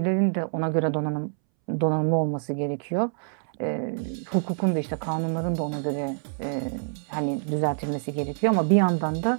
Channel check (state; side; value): silent; left; 61 dB below the other